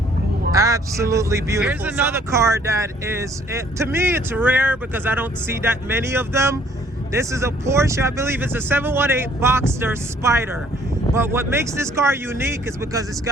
Absolutely beautiful. Here's another car that is, to me, it's rare because I don't see that many of them. This is a Porsche, I believe it's a 718 Boxster Spider. But what makes this car unique is because it's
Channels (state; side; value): normal; both; correlation 0.60